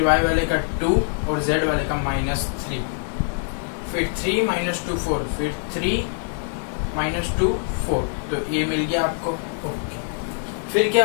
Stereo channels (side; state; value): right; silent; 63 dB below the other